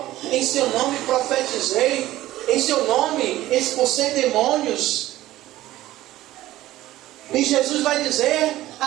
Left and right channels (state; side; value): quieter; left; 15.5 dB